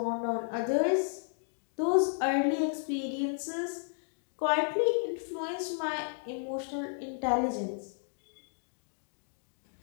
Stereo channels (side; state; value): right; silent; digital silence